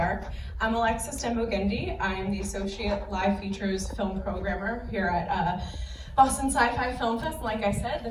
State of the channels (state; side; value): identical; both; correlation 1.00